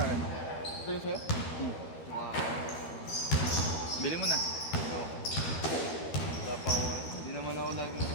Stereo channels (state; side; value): late; right; 12 ms